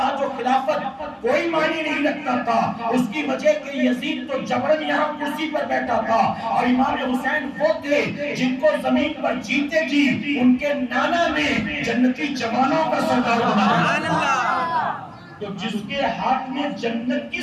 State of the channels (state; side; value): identical; both; correlation 1.00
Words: و خلافت کوئی معنی نہیں رکھتا تھا۔ اس کی وجہ کہ یزید تو جبرن یہاں کرسی پر بیٹھا تھا، اور امام حسین وہ تھے جن کو زمین پر جیتے جی ان کے نانا نے جنتی جوانوں کا سردار بنایا۔ تو جس کے ہاتھ میں جنت